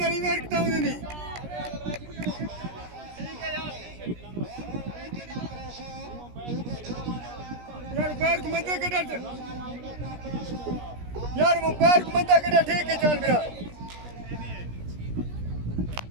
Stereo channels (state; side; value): late; left; 17 ms